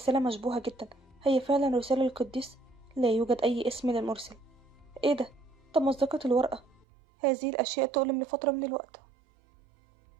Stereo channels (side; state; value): left; drops out; at 6.9 s